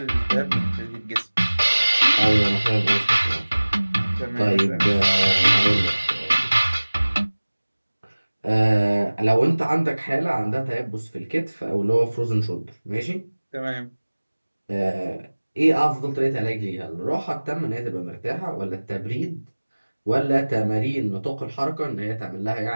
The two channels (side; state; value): both; inverted; correlation -1.00